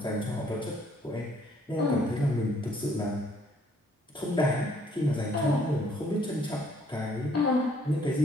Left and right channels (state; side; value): normal; both; correlation 0.64